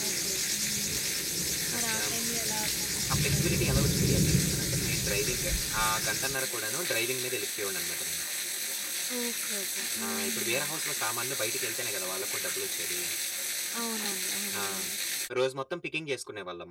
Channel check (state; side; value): identical; both; correlation 1.00